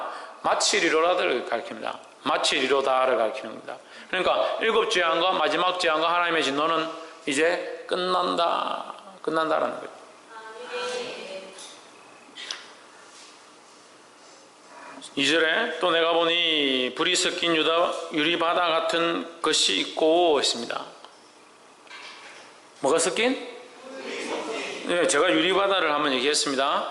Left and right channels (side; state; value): both; identical; correlation 1.00